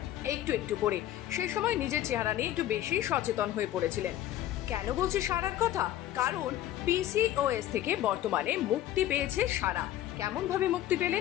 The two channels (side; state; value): right; quieter; 13.1 dB